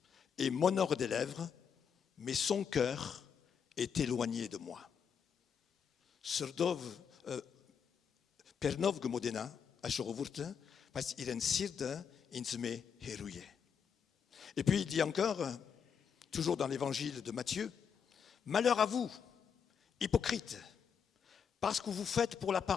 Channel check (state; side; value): quieter; right; 7.1 dB